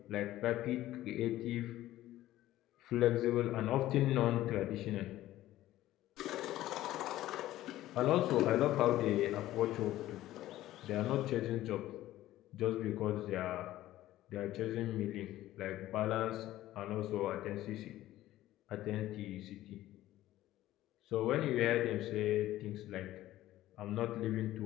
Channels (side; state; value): right; quieter; 14.8 dB